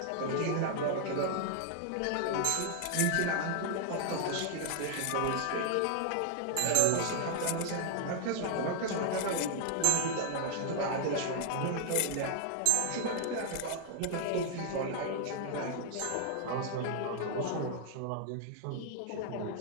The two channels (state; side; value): different; both; correlation 0.00